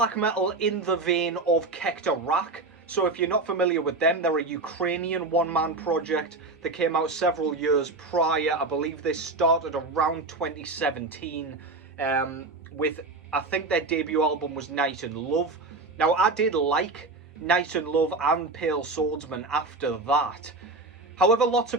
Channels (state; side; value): quieter; left; 3.3 dB